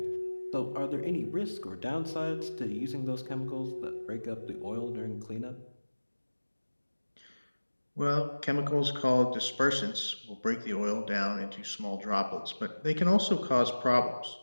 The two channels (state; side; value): inverted; both; correlation -1.00